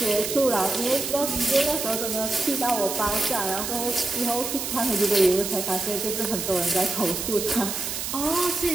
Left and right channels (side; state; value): right; noise; hiss, 4 dB below the sound